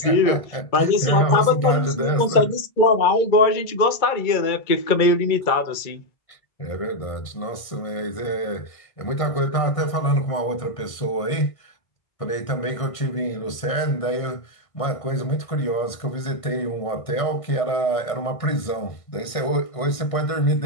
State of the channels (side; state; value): right; late; 1.5 ms